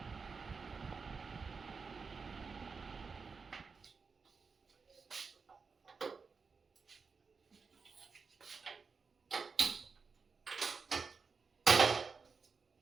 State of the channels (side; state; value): left; quieter; 5.0 dB